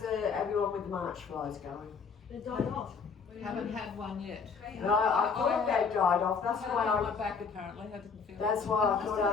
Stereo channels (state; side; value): quieter; right; 5.5 dB